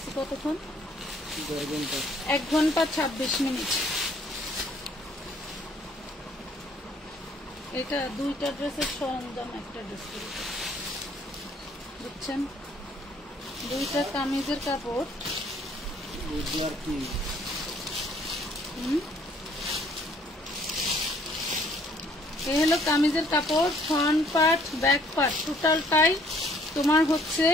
কতক্ষণ, 1 ঘন্টা 26 মিনিট। এটা 2টা ড্রেসের সরঞ্জাম, একটা ড্রেস বুঝছেন, 2টা কামিজের কাপড়। এই হলো কামিজের কাপড়, ফ্রন্ট পার্ট ব্যাক পার্ট টোটালটাই তোমার হচ্ছে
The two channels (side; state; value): both; normal; correlation 0.61